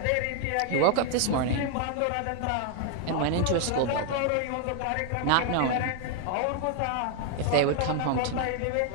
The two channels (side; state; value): both; different; correlation 0.00